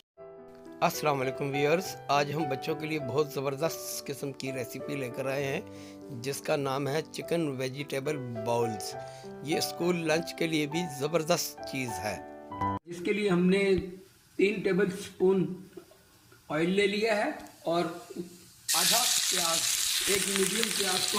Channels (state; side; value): identical; both; correlation 1.00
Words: अस्सलाम वालेकुम viewers, आज हम बच्चों के लिए बहुत ज़बरदस्त किस्म की रेसिपी लेकर आए हैं जिसका नाम है चिकन वेजिटेबल बाउल्स। ये स्कूल लंच के लिए भी ज़बरदस्त चीज़ है। इसके लिए हमने 3 टेबल स्पून ऑयल ले लिया है और आधा प्याज, एक मीडियम प्याज को